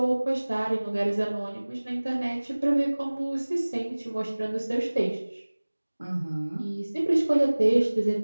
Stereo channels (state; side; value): inverted; both; correlation -1.00